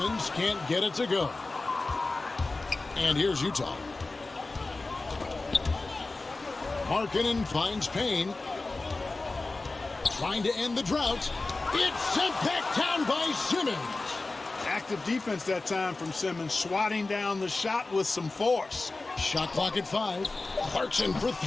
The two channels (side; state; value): right; quieter; 3.4 dB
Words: can't get it to go. And here's Utah. Markkanen finds Payne. Trying to end the drought. It's sent back down by Simmons. Active defense that time from Simmons, swatting down the shot with some force. Shot clock at 5. Clarkson for